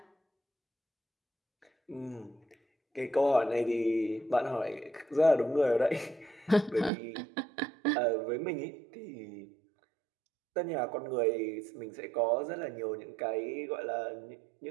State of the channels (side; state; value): left; drops out; at 6.9 s